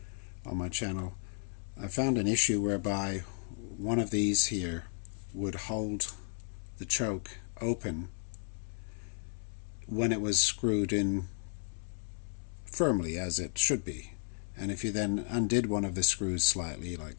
on my channel, I found an issue whereby one of these here would hold the choke open when it was screwed in firmly, as it should be. And if you then undid one of the screws slightly, like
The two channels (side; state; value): right; silent; 55 dB below the other